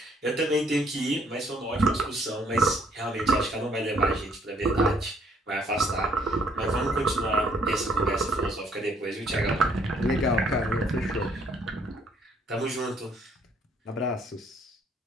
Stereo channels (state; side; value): normal; both; correlation 0.65